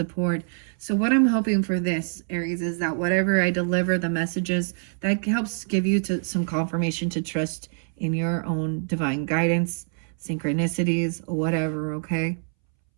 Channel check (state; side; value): silent; left; 62 dB below the other